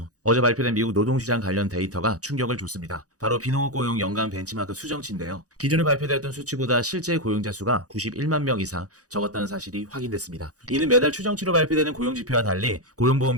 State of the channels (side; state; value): left; late; 0.67 ms